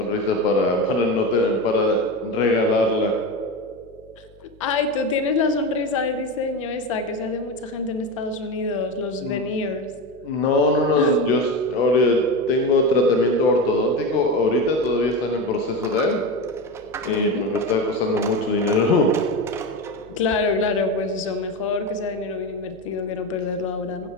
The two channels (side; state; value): left; noise; hum, 28 dB below the sound